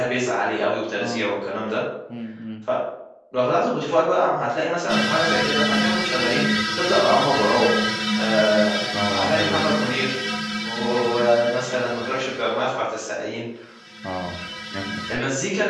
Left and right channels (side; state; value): both; identical; correlation 1.00